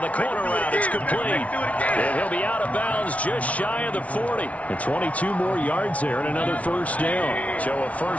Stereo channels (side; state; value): right; late; 0.066 ms